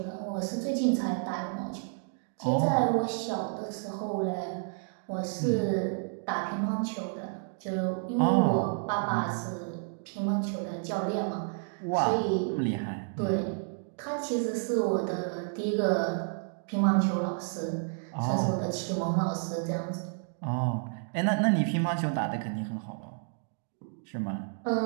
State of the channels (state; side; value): silent; left; 57 dB below the other